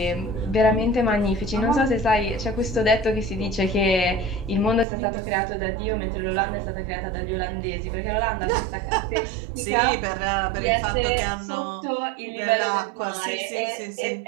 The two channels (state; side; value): drops out; left; at 4.9 s